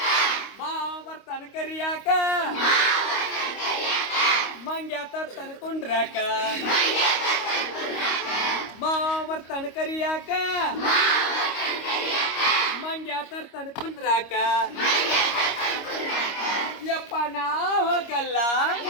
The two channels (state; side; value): late; right; 25 ms